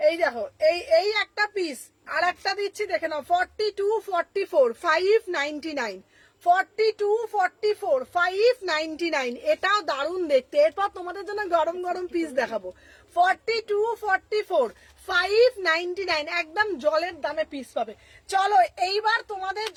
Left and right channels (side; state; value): both; identical; correlation 1.00